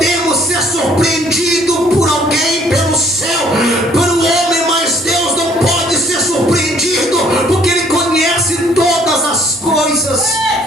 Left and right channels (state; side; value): noise; right; hum, 28 dB below the sound